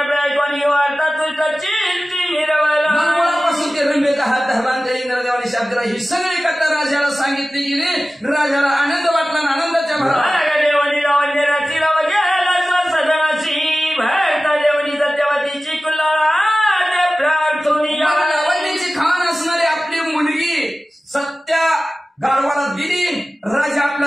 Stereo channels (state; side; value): normal; both; correlation 0.96